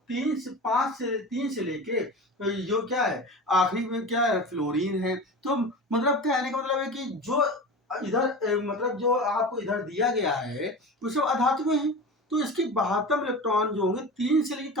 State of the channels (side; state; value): both; normal; correlation 0.31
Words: 3 से लेके जो क्या है आखिरी में क्या है फ्लोरीन है। तो मतलब कहने का मतलब है कि जो इधर मतलब जो आपको इधर दिया गया है वो सब अधातु हैं। तो इसके 72 इलेक्ट्रॉन जो होंगे 3 से लेकर